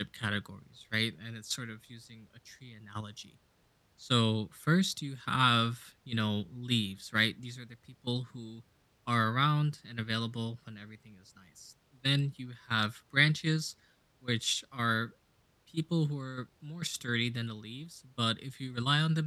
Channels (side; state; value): both; identical; correlation 1.00